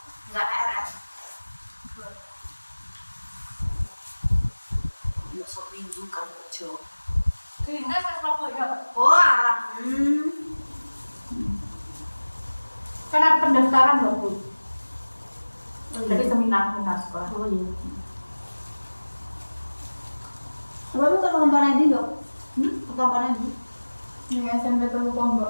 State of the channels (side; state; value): both; inverted; correlation -1.00